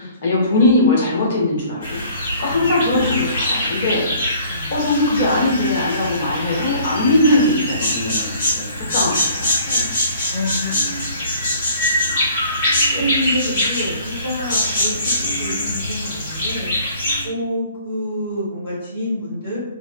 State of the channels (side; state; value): both; inverted; correlation -0.53